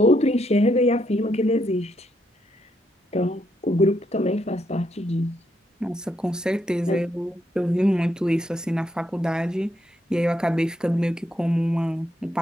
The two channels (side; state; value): both; normal; correlation 0.77